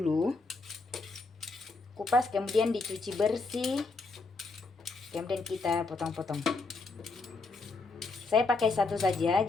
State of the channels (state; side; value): quieter; right; 3.8 dB